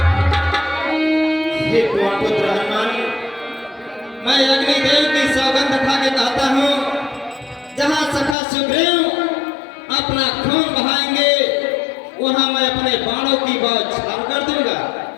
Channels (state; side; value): drops out; right; at 8.3 s